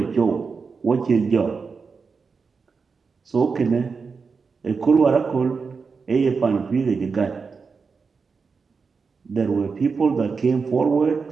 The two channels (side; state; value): left; quieter; 5.0 dB